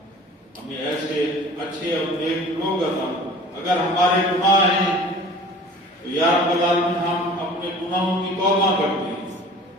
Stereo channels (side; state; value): both; normal; correlation 0.45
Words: ہمیں ایسے اچھے اور نیک لوگ عطا۔ اگر ہمارے گناہ ہیں تو یا رب العالمین ہم اپنے گناہوں کی توبہ کرتے ہیں،